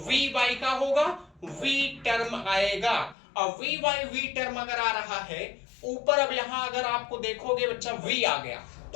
v बाई का होगा, v टर्म आएगा। और v बाई v टर्म अगर आ रहा है ऊपर, अब यहां अगर आपको देखोगे बच्चा v आ गया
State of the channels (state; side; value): drops out; right; at 3.2 s